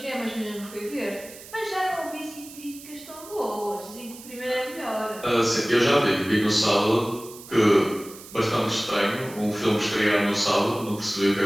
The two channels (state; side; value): noise; right; hiss, 17 dB below the sound